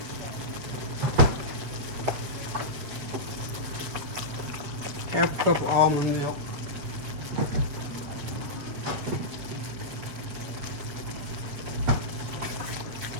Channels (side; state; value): left; late; 7.8 ms